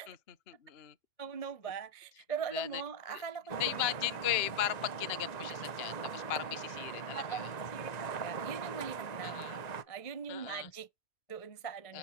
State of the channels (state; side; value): late; right; 1.9 ms